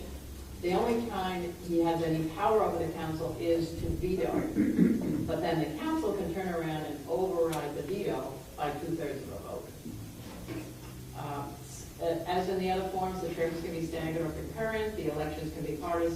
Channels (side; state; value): both; identical; correlation 1.00